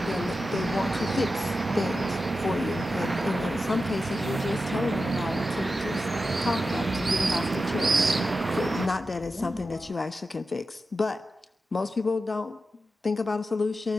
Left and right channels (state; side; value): normal; both; correlation 0.91